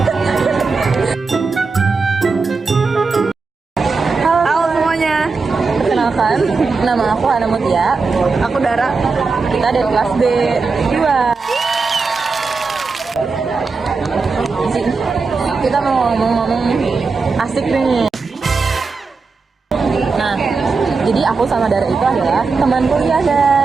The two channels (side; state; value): left; quieter; 4.4 dB